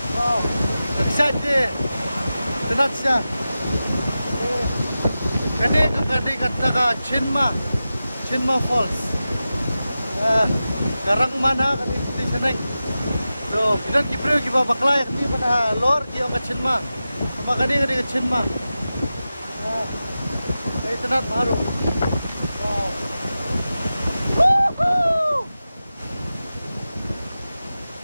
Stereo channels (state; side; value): inverted; both; correlation -0.93